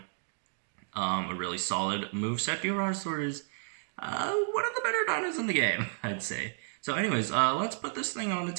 a really solid moveset, Diorajasaur is one of the better dinos in the game, I'd say. So anyways, let's put this thing on the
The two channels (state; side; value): silent; left; digital silence